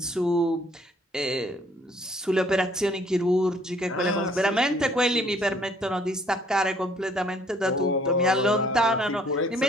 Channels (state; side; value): normal; both; correlation 0.61